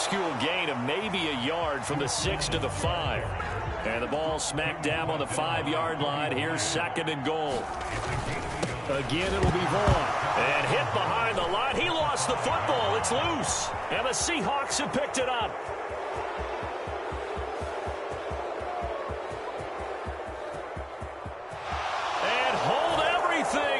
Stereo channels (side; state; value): both; identical; correlation 1.00